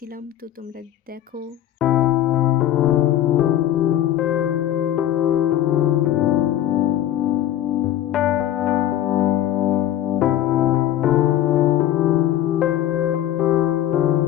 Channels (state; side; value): quieter; right; 12.3 dB